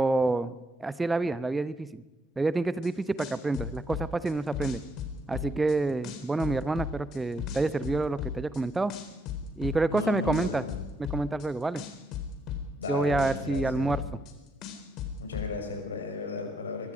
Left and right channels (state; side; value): normal; both; correlation 0.76